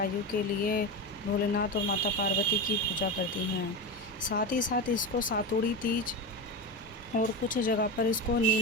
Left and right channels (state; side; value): normal; both; correlation 0.20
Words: के लिए भोलेनाथ और माता पार्वती की पूजा करती हैं। साथ ही साथ इसको सातुड़ी तीज और कुछ जगह पर इसको